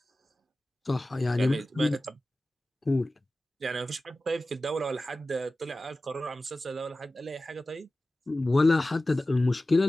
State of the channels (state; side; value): normal; both; correlation 0.95